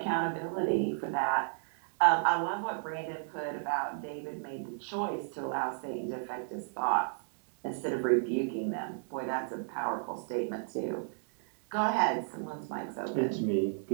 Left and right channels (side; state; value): left; silent; digital silence